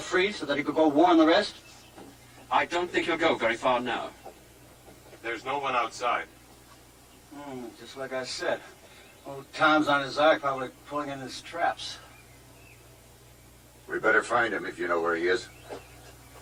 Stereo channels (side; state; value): both; identical; correlation 1.00